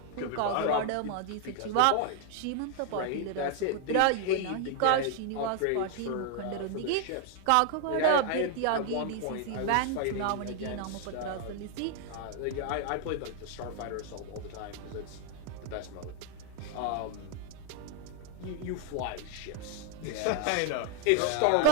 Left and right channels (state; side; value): different; both; correlation 0.00